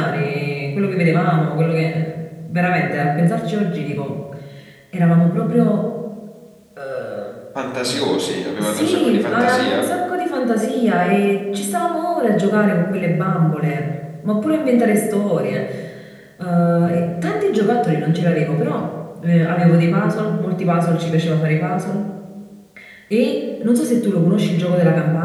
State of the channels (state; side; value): identical; both; correlation 1.00